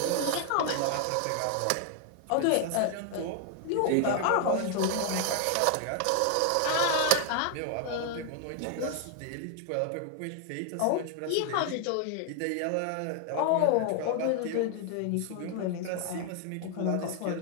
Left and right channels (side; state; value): both; different; correlation 0.00